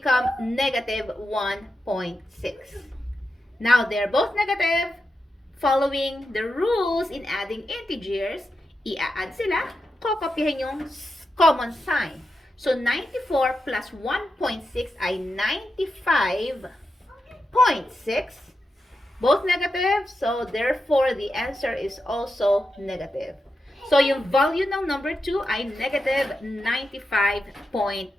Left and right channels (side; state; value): both; normal; correlation 0.88